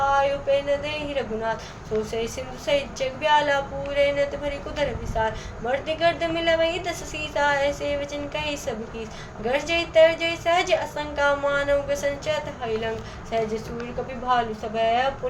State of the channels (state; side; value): identical; both; correlation 1.00